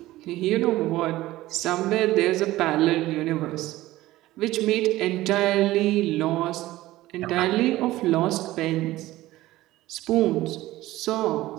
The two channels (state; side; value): quieter; left; 16.8 dB